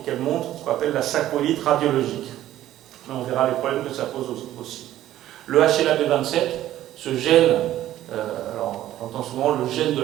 qu'elle montre ce qu'on appelle la sacroïlite radiologique. Mais on verra les problèmes que ça pose aussi. Le HLA-B27, ce gène, alors on entend souvent le gène de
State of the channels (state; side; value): quieter; left; 13.3 dB